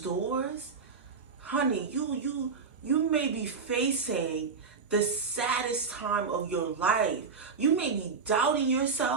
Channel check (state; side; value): quieter; left; 5.2 dB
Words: doors, honey, you may be facing the saddest time of your life. You may be doubting